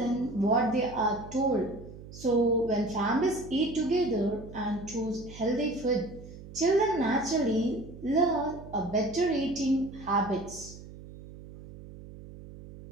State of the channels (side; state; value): right; noise; hum, 16 dB below the sound